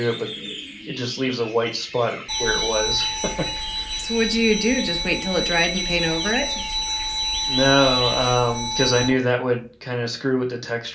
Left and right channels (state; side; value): identical; both; correlation 1.00